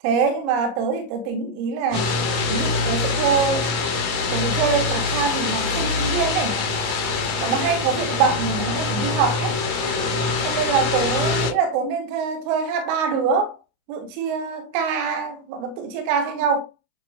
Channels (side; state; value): left; late; 25 ms